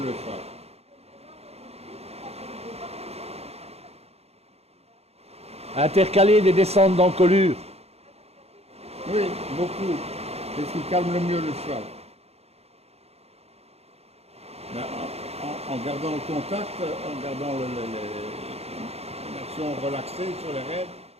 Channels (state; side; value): late; left; 0.30 ms